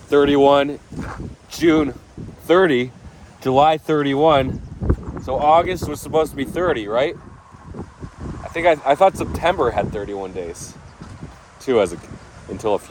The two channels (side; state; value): both; identical; correlation 1.00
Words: 31, June 30, July 31. So August was supposed to be 30, right? I thought September had 31 days too, until a